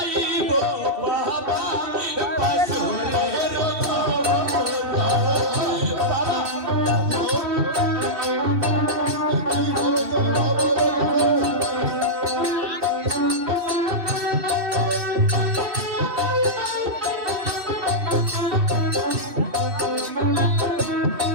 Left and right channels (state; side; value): late; left; 2.7 ms